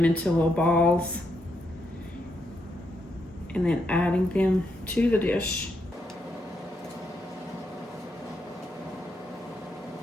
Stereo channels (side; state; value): both; normal; correlation 0.80